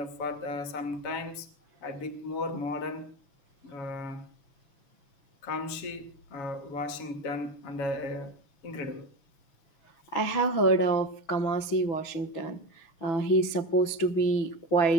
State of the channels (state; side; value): late; right; 6.1 ms